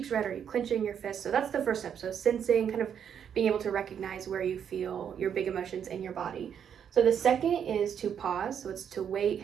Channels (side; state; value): left; quieter; 8.3 dB